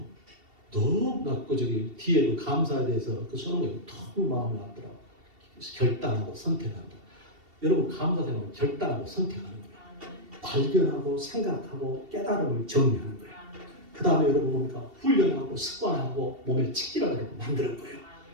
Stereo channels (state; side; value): late; left; 2.7 ms